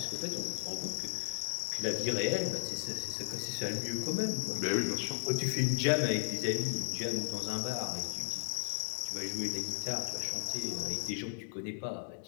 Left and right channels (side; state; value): right; silent; digital silence